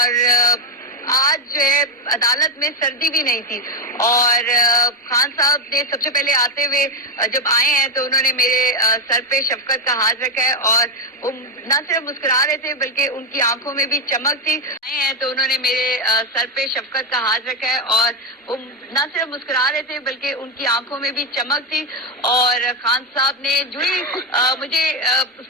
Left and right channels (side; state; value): both; normal; correlation 0.07